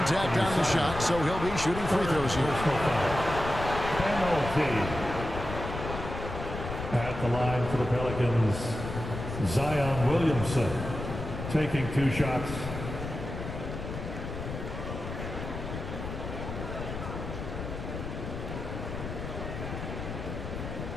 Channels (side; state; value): left; noise; rumble, 7 dB below the sound